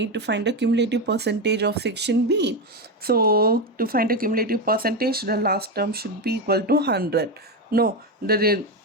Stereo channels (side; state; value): both; normal; correlation 0.12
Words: to find the cumulative percentage of section B. So to find the cumulative percentage, the last term should be equal to 100. No, the